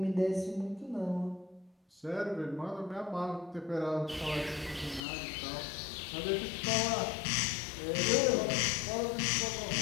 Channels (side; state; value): right; drops out; at 5.1 s